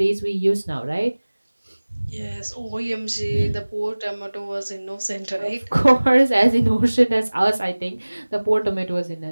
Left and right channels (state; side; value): inverted; both; correlation -1.00